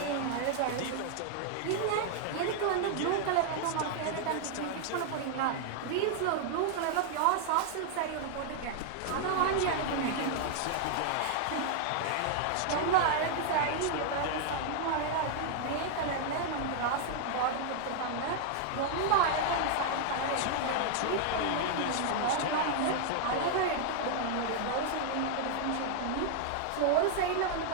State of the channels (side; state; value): both; different; correlation 0.00